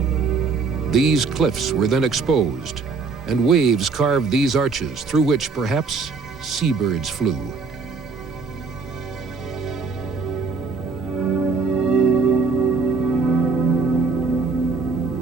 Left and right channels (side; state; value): left; quieter; 4.6 dB